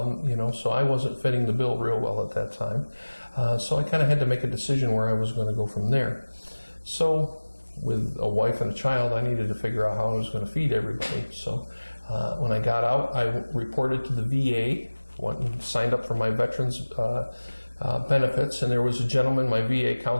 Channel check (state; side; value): inverted; both; correlation -1.00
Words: I wasn't fitting the bill real well at that time. So I kind of had to make a decision where I was going to go from there. So with a wife and a child, I needed to figure out how I was going to feed everybody. So when I got out, I reported to the VA, went and signed up for my veterans benefits, and there was a gentleman, my VA